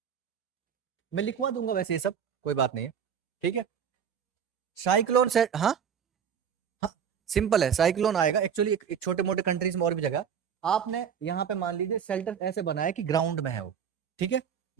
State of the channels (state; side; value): quieter; left; 7.8 dB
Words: मैं लिखवा दूंगा वैसे ये सब, कोई बात नहीं है, ठीक है, साइक्लोन से, हाँ हाँ, सिंपल है, साइक्लोन आएगा एक्चुअली एक छोटे मोटे कंट्रीज में और भी जगह, आपने यहाँ पे मान लीजिए शेल्टर ऐसे बनाया कि ग्राउंड में है वो, ठीक है,